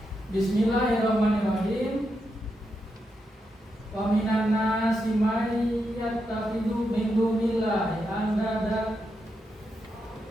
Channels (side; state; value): both; normal; correlation 0.84